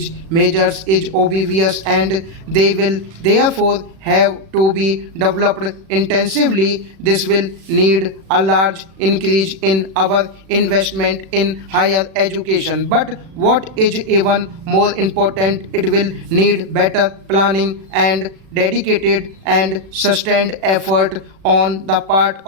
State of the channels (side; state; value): left; late; 37 ms